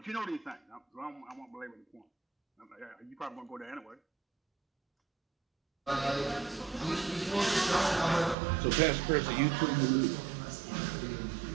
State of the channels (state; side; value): drops out; left; at 8.3 s